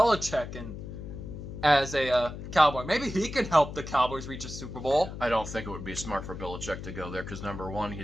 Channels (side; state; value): left; noise; hum, 9 dB below the sound